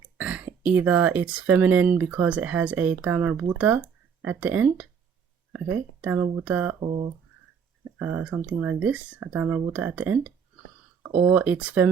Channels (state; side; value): quieter; left; 6.9 dB